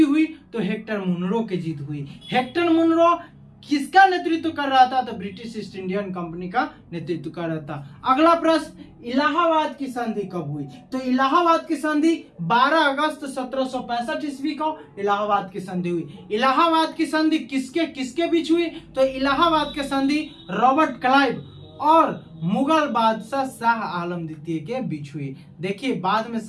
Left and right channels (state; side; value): identical; both; correlation 1.00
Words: हुई? तो हेक्टर मुनरो की जीत हुई। हेक्टर मुनरो किसका नेतृत्व कर रहा था? तो ब्रिटिश ईस्ट इंडियन कंपनी का नेतृत्व कर रहा था। अगला प्रश्न, इलाहाबाद की संधि कब हुई? तो इलाहाबाद की संधि 12 अगस्त 1765 ईस्वी को इलाहाबाद की संधि हुई। इलाहाबाद की संधि किसके किसके बीच हुई? तो इलाहाबाद की संधि रॉबर्ट क्लाइव और मुगल बादशाह शाह आलम द्वितीय के बीच हुई। देखिए बाद में